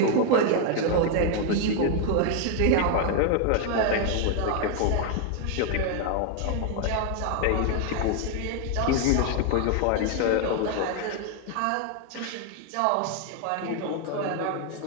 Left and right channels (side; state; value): both; different; correlation 0.00